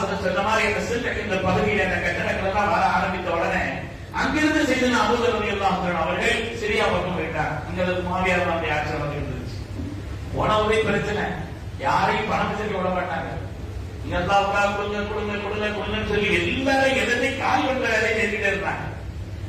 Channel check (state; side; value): identical; both; correlation 1.00